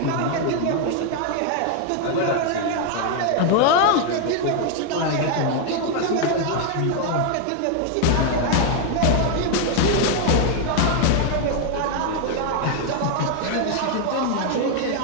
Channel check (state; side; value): different; both; correlation 0.00